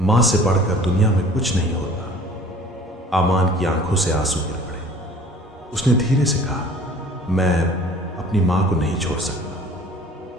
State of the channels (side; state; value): both; normal; correlation 0.48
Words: से बढ़कर दुनिया में कुछ नहीं होता। अमान की आंखों से आंसू गिर पड़े। उसने धीरे से कहा, मैं अपनी मां को नहीं छोड़ सकता।